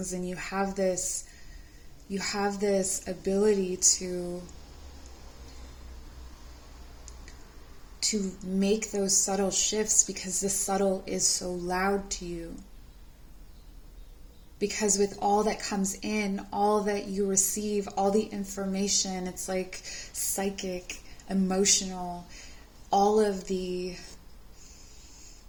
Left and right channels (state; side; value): identical; both; correlation 1.00